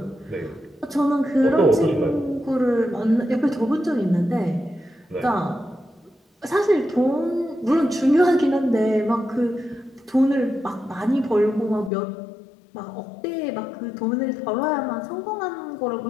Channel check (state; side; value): drops out; right; at 11.9 s